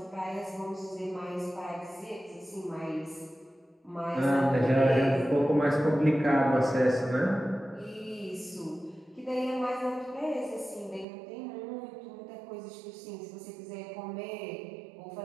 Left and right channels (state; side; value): drops out; left; at 11.1 s